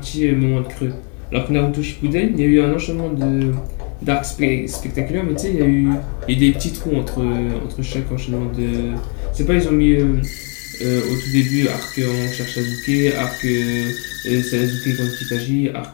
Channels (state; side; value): quieter; right; 38.3 dB